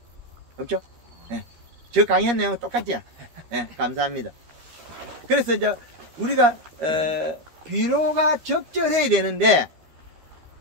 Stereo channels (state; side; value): late; left; 12 ms